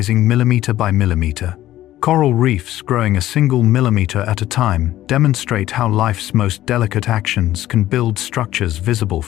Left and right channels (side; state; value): right; quieter; 14.1 dB